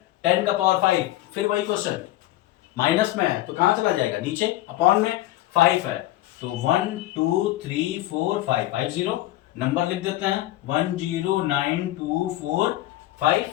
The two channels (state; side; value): quieter; right; 15.5 dB